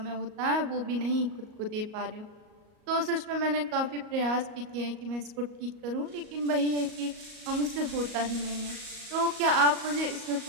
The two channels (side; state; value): left; late; 38 ms